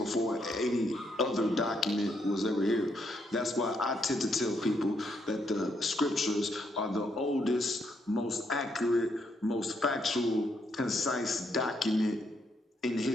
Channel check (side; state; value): both; normal; correlation 0.76